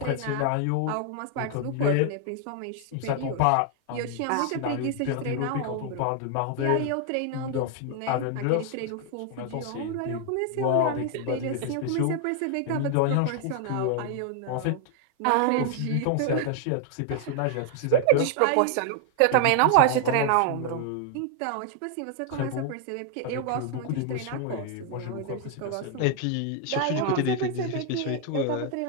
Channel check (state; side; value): different; both; correlation 0.00